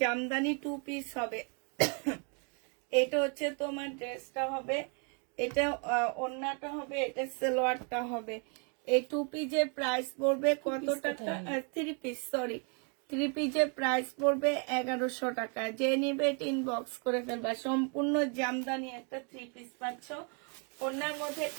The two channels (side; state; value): left; quieter; 37.7 dB